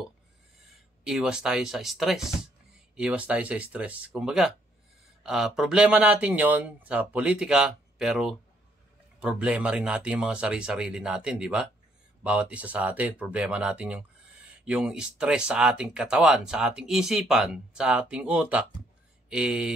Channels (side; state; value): both; normal; correlation 0.69